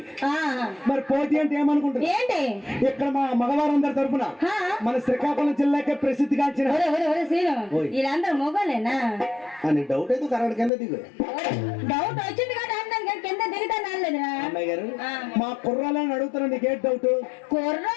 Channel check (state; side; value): drops out; right; at 10.7 s